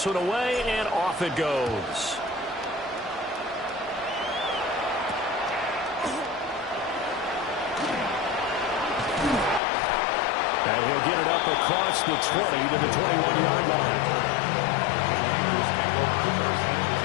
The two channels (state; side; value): drops out; right; at 9.6 s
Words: one away, and off it goes. And he'll get it up across the 20 to the 21-yard line.